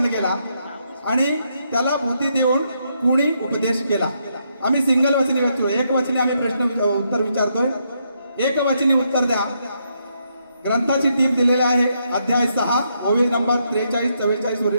गेला आणि त्याला बुद्धी देऊन कुणी उपदेश केला. आम्ही सिंगल वचनी विचारतो. एक वचनी आम्ही प्रश्न उत्तर विचारतोय. एक वचनी उत्तर द्या. ग्रंथाची टीप दिलेली आहे. अध्याय 6 ओवी नंबर 43-44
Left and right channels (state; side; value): inverted; both; correlation -0.77